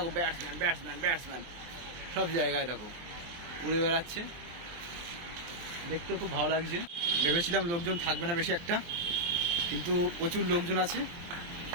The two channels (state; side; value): late; left; 23 ms